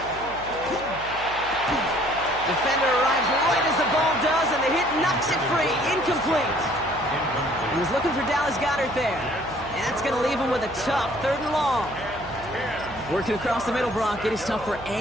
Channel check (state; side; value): noise; right; hum, 17 dB below the sound